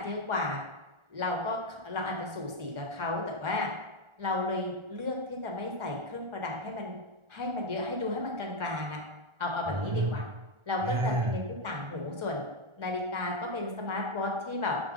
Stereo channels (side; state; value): left; late; 1.4 ms